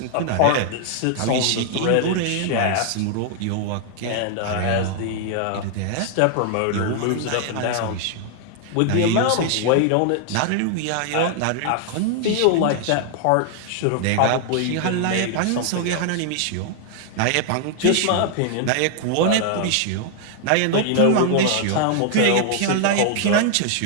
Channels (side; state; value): both; different; correlation 0.00